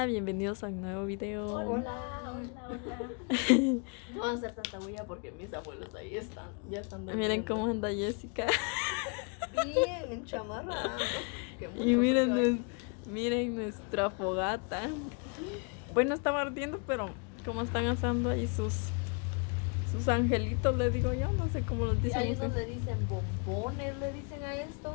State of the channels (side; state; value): right; quieter; 36.1 dB